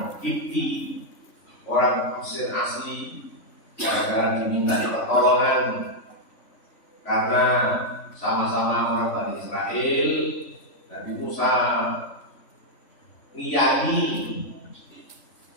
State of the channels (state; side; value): late; right; 3.5 ms